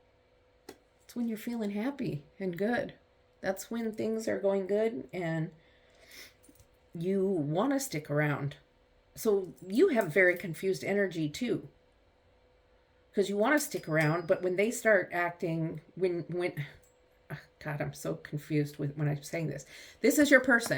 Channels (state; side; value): identical; both; correlation 1.00